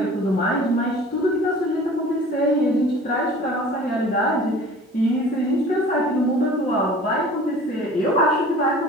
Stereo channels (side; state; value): both; normal; correlation 0.44